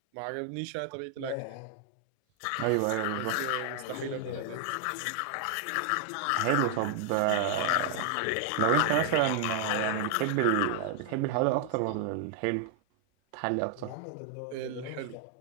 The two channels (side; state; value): both; different; correlation 0.00